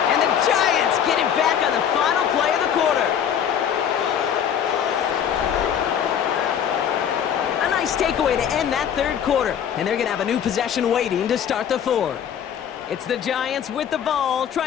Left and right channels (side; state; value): right; quieter; 8.8 dB